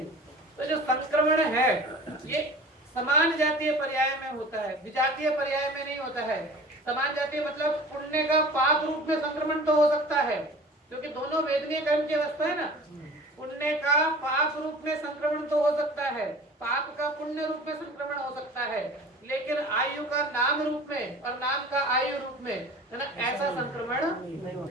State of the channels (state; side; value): normal; both; correlation 0.41